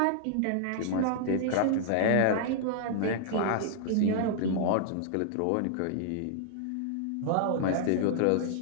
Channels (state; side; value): different; both; correlation -0.01